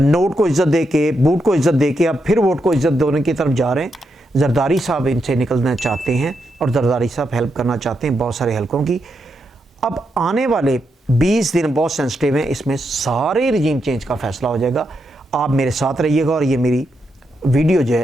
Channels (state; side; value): normal; both; correlation 0.83